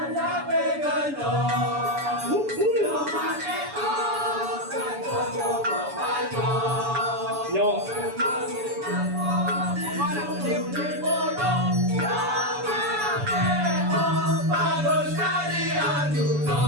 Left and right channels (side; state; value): left; late; 7.0 ms